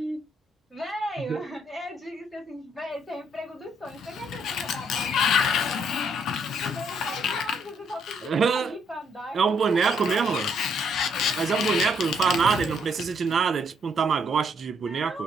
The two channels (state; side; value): normal; both; correlation 0.70